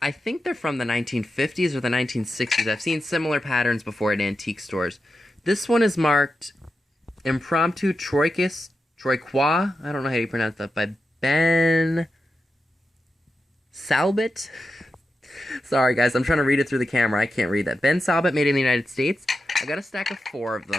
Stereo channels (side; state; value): both; normal; correlation 0.89